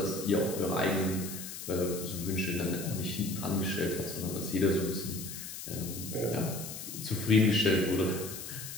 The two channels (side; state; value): left; noise; hiss, 9 dB below the sound